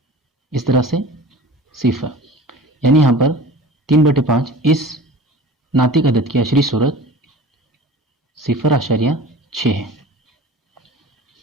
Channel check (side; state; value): both; normal; correlation 0.39